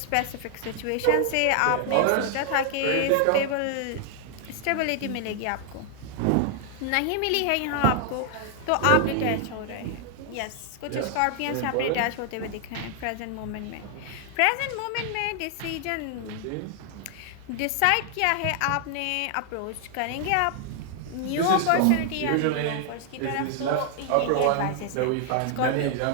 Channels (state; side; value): different; both; correlation 0.00